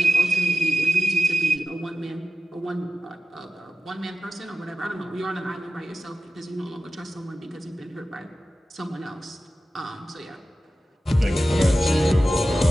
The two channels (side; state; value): both; normal; correlation 0.94